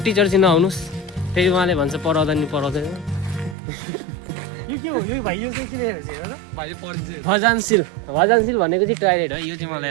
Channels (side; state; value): left; drops out; at 3.6 s